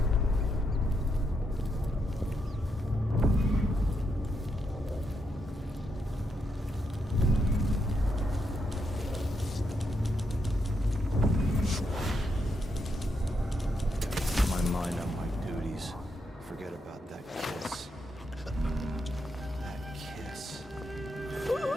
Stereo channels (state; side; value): normal; both; correlation 0.81